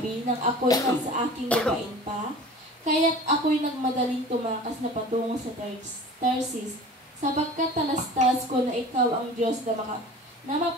nang ako'y nasa aking lupain pa? Kaya't ako'y nagmadaling tumakas na patungo sa Tarsis, sapagkat talastas ko na ikaw ang Diyos na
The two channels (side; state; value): both; normal; correlation 0.40